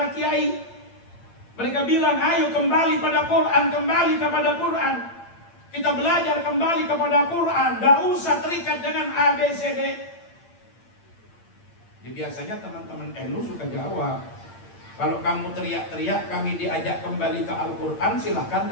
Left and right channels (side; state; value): right; late; 8.8 ms